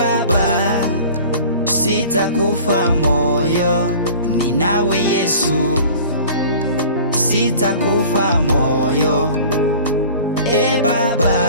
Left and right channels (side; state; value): both; inverted; correlation -0.44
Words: sitakufa moyo, ninawe Yesu. Sitakufa moyo,